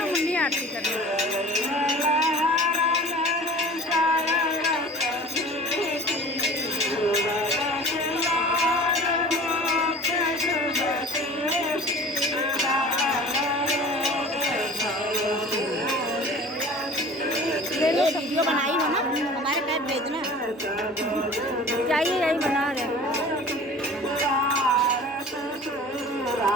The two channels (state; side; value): normal; both; correlation 0.42